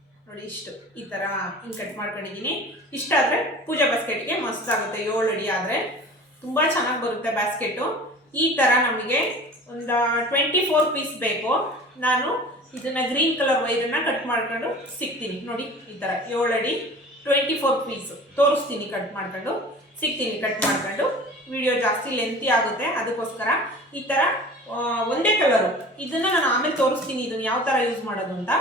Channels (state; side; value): normal; both; correlation 0.41